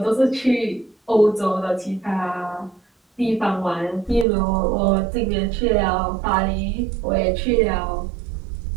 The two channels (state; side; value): drops out; left; at 4.2 s